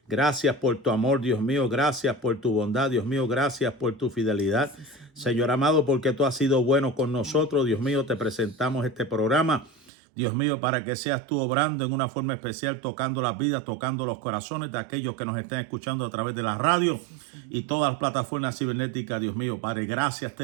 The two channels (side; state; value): left; drops out; at 9.7 s